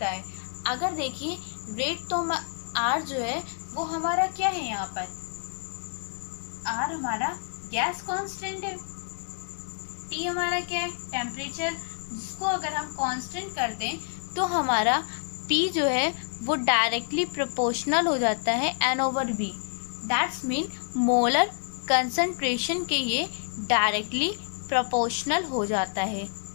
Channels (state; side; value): silent; right; 59 dB below the other